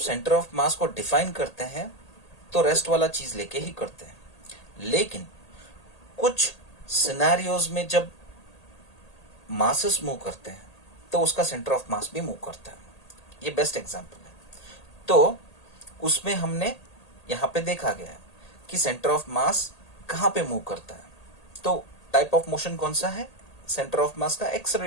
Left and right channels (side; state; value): right; late; 1.8 ms